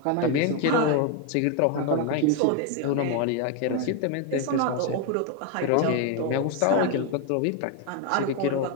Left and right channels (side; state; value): both; different; correlation 0.01